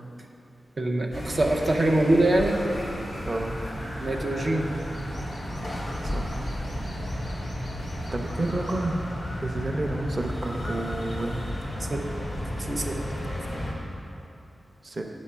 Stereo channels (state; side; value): normal; both; correlation 0.93